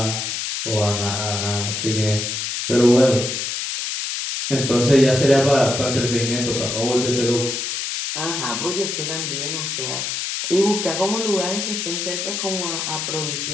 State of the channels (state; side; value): noise; left; hiss, 3 dB below the sound